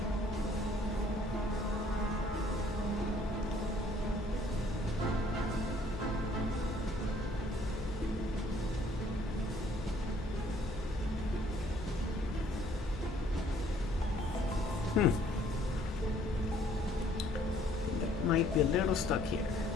That might be a little stuck here.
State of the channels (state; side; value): normal; both; correlation 0.60